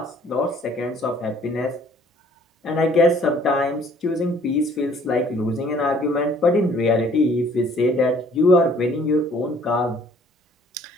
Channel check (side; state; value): both; normal; correlation 0.58